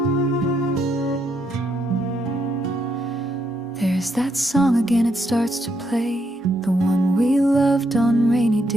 There's that song again, it starts to play, the one we loved on rainy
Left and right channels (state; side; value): normal; both; correlation 0.77